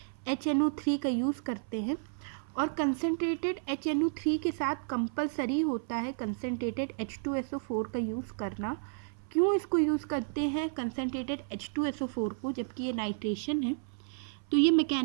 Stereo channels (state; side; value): silent; left; 56 dB below the other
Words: HNO3 का यूज़ करते हैं, और कंसनट्रेटेड HNO3 के साथ कंपलसरी होता है कंसनट्रेटेड H2SO4 का यूज़ करना। क्यों इसको यूज़ करते हैं कंसनट्रेटेड H2SO4 को, जबकि ये नाइट्रेशन है? तो ये